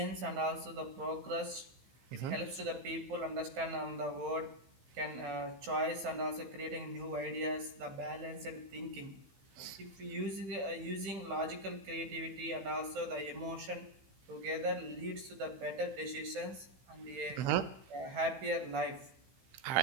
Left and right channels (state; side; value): late; left; 15 ms